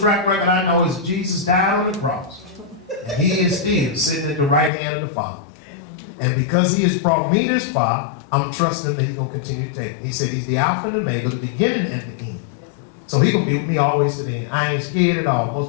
record I know is Jesus died on the cross. And he is still sitting at the right hand of the Father. And because he has brought me this far, I'm trusting that he's going to continue to take me. He said he's the Alpha and the Omega, the beginning and the end. So he's going to be with me always to the end. I ain't scared at all.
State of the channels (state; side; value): drops out; right; at 4.7 s